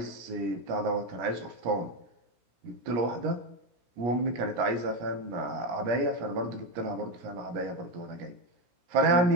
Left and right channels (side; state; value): left; late; 17 ms